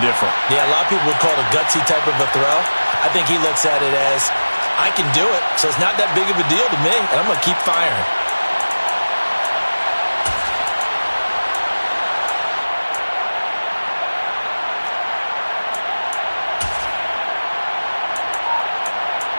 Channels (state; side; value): inverted; both; correlation -1.00